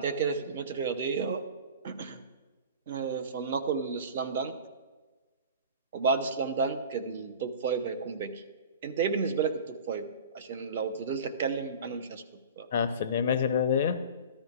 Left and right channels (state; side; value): inverted; both; correlation -0.37